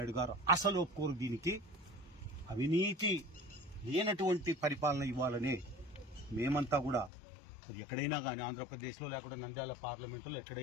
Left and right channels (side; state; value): right; drops out; at 7.1 s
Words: గారు అసలు ఒప్పుకోరు దీనికి. అవినీతి లేనటువంటి పరిపాలన ఇవ్వాలని మేమంతా కూడా, అది ఎక్కడైనా కానీ ఆంధ్రప్రదేశ్లో లేకుండా నంద్యాల పార్లమెంటులో